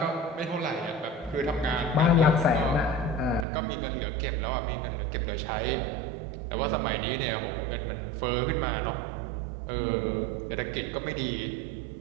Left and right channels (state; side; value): drops out; left; at 3.5 s